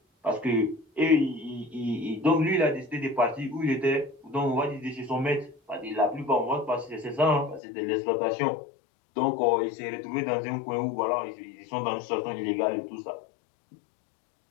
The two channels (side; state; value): right; drops out; at 7.6 s